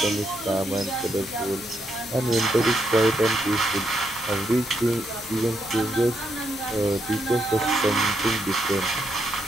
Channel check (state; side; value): normal; both; correlation 0.78